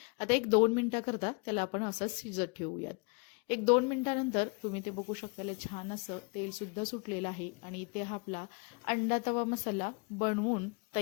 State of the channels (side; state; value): right; quieter; 32.4 dB